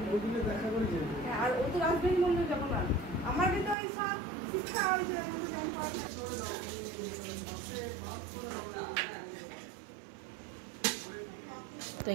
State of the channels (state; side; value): drops out; left; at 3.8 s